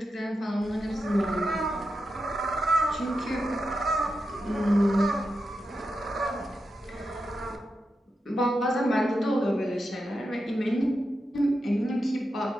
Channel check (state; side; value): normal; both; correlation 0.88